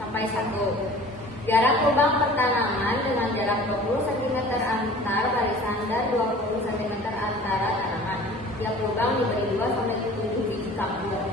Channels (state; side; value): normal; both; correlation 0.45